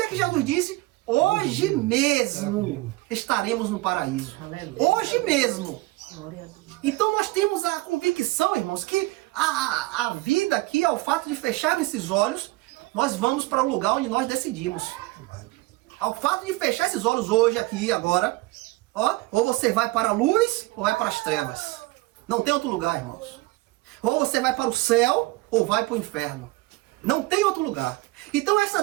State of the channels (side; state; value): left; quieter; 20.8 dB